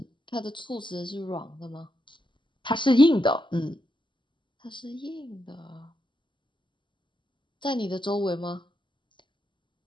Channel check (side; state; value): right; late; 0.23 ms